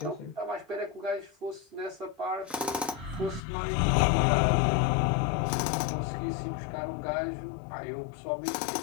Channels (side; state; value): right; drops out; at 3.4 s